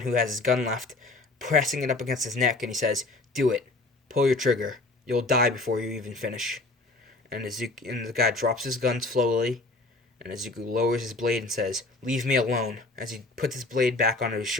has his gun left, pressing it up against his neck, and he says, "Do it. Pull your trigger. You'll die before you even finish." And the guy drops his gun slowly, and Izuku lowers his blade and says, "Leave me alone." As he puts his blade back onto his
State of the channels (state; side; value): quieter; right; 3.2 dB